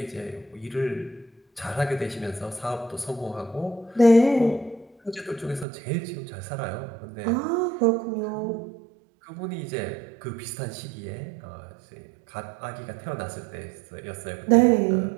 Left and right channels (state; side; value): drops out; left; at 5.7 s